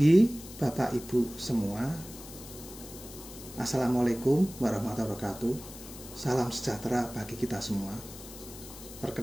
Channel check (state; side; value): noise; left; hiss, 15 dB below the sound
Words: Bapak Ibu semua. Assalamualaikum warahmatullahi wabarakatuh. Salam sejahtera bagi kita semua.